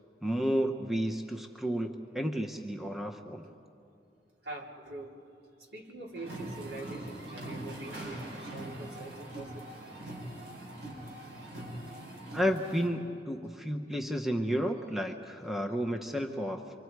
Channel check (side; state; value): both; normal; correlation 0.85